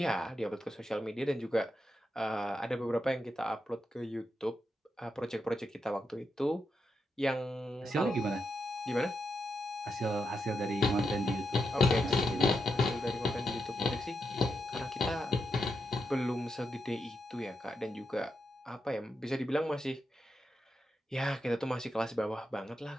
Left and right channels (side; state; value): both; normal; correlation 0.85